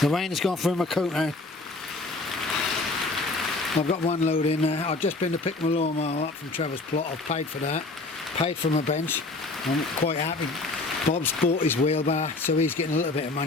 rain has gone through my coat now. I've got one load in there. I've just been to pick my lawnmower up from Trevor's plot. I've paid for that. Paid for my bench. I'm quite happy. Bob's bought his wheelbar, so he's getting a little bit of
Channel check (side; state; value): right; quieter; 3.2 dB